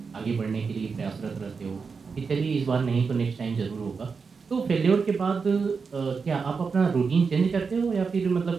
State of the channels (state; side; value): quieter; left; 5.2 dB